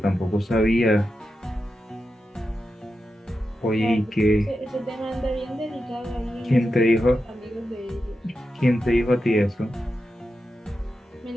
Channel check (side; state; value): both; normal; correlation 0.89